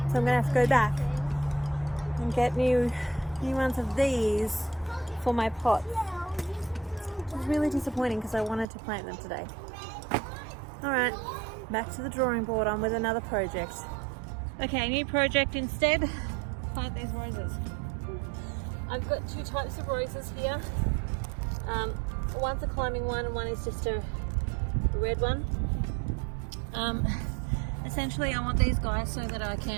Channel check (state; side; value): drops out; left; at 8.7 s